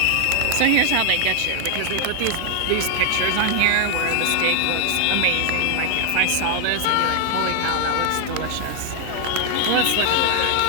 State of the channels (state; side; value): different; both; correlation 0.00